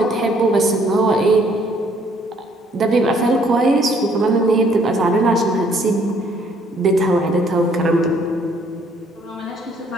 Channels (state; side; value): normal; both; correlation 0.64